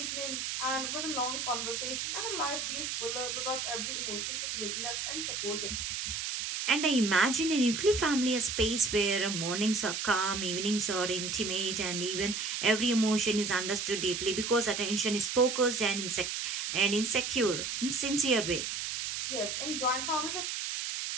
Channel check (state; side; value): noise; right; hiss, 3 dB below the sound